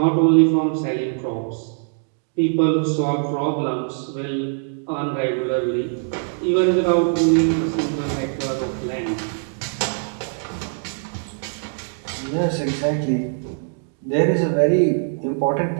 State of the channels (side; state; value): left; silent; digital silence